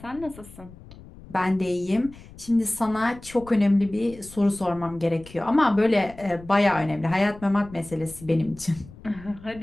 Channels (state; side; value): noise; left; rumble, 19 dB below the sound